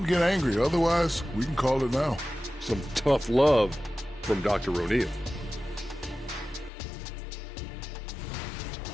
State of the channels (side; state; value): right; drops out; at 6.7 s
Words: to get angry. Otherwise, we can call it now. Some tough love from Dr. O'Neal.